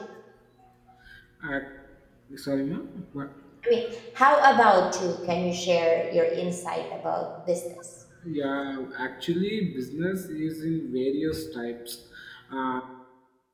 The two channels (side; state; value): both; identical; correlation 1.00